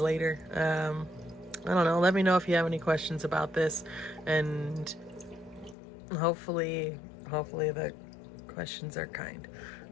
I don't know. Let me know if you have any questions about this, and hopefully the questions are kind.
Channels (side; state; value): right; drops out; at 5.8 s